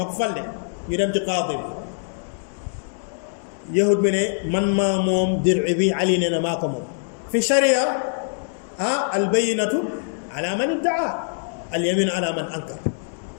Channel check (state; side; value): silent; right; 62 dB below the other